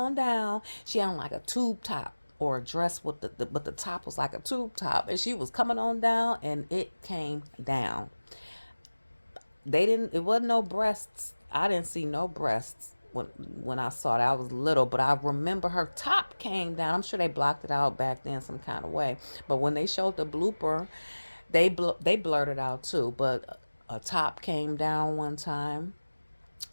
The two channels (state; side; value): inverted; both; correlation -1.00